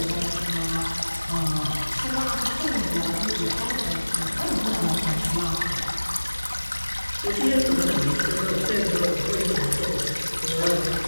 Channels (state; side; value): inverted; both; correlation -1.00